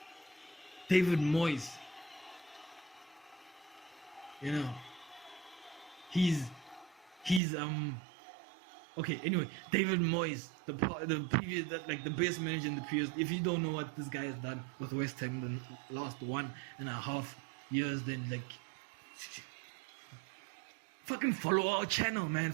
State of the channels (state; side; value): drops out; left; at 7.4 s